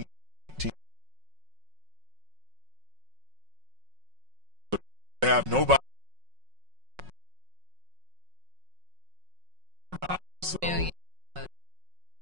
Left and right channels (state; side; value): late; left; 5.4 ms